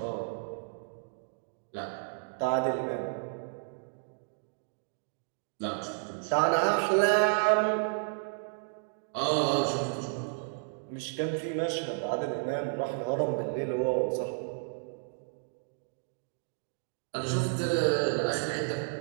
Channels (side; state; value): left; silent; digital silence